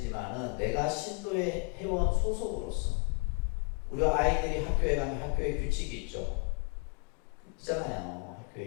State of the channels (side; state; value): right; quieter; 32.4 dB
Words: 내가 신도의 회원 소속으로서 우리 아이들이 학교에 가면 학교에 규칙이 있죠. 있잖아요.